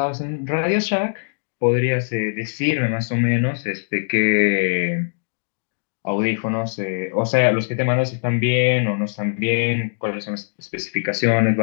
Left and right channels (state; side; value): silent; right; digital silence